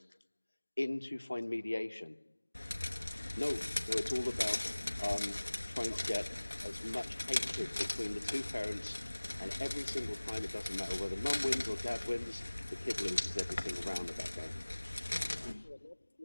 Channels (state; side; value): inverted; both; correlation -1.00